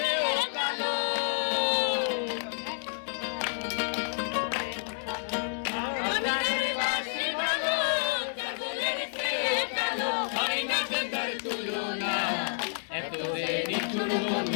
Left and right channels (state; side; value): silent; right; digital silence